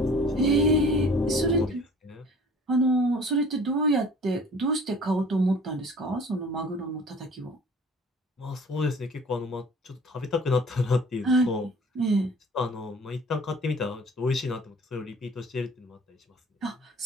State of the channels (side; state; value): both; normal; correlation 0.49